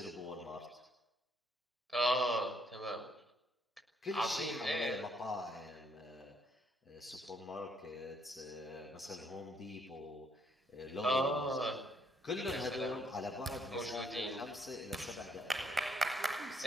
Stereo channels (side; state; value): both; normal; correlation 0.69